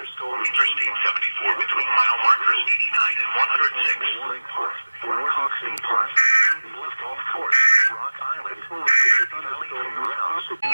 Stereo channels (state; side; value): inverted; both; correlation -1.00